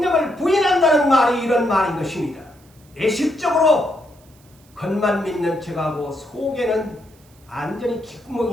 부인한다는 말이 이런 말인 것입니다. 예식적으로 겉만 믿는 척하고 속에는 완전히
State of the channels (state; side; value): noise; right; hiss, 30 dB below the sound